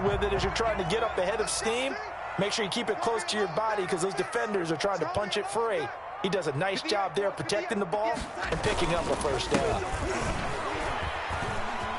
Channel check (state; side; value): identical; both; correlation 1.00